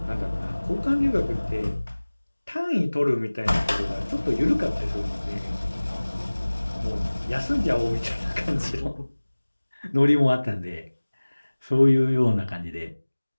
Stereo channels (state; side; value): inverted; both; correlation -1.00